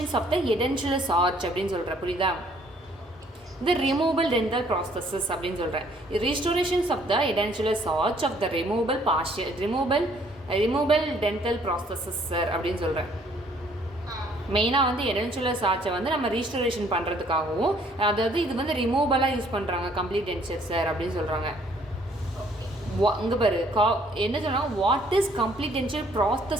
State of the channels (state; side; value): normal; both; correlation 0.62